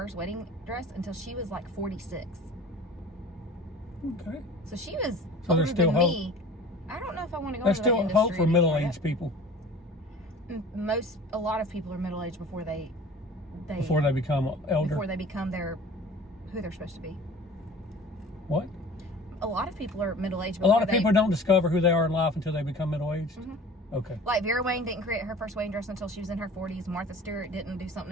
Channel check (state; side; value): normal; both; correlation 0.43